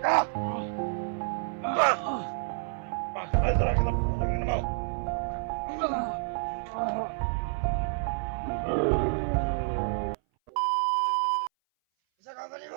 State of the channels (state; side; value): silent; left; 57 dB below the other